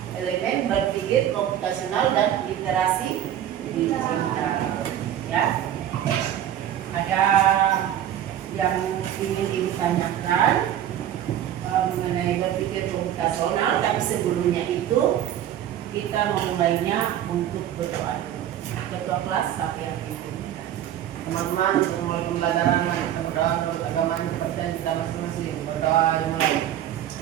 elemen berpikir komputasional dan literasi digital, ya. Ada yang ingin ditanyakan mengenai berpikir komputasional, tapi sebelumnya itu kita memulainya untuk berdoa dulu. Ketua kelas siapa yang pimpin? Teman-teman, untuk mulai pembelajaran kita berdoa menurut agama kepercayaan kita masing-masing. Berdoa dimulai.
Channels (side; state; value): left; quieter; 11.0 dB